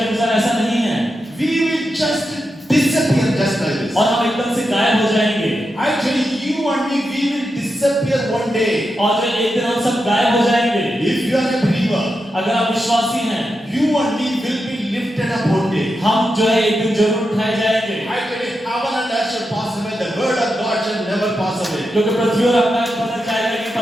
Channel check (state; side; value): normal; both; correlation 0.87